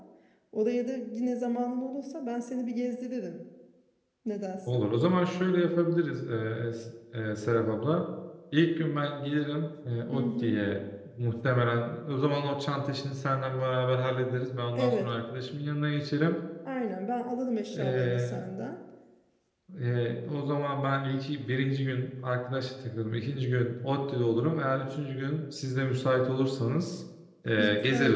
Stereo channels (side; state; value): both; identical; correlation 1.00